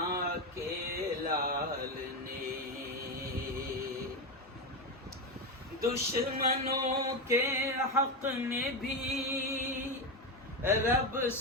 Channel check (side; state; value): both; normal; correlation 0.13